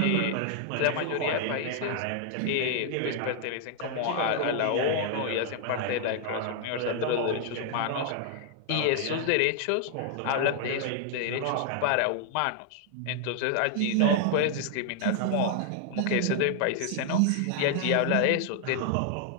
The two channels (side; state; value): both; different; correlation 0.00